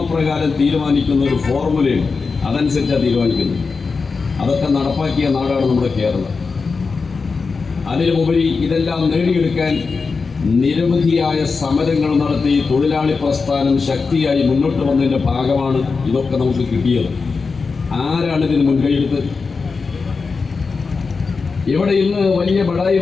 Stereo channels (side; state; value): right; quieter; 4.7 dB